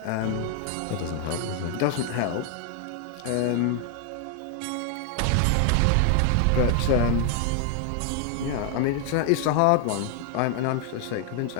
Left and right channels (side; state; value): both; different; correlation 0.00